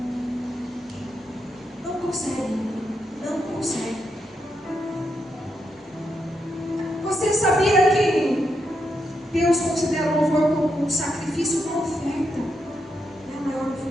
Não consegue. Não consegue. Você sabia que Deus considera o louvor como um sacrifício, uma oferta? É a maior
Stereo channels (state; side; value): normal; both; correlation 0.82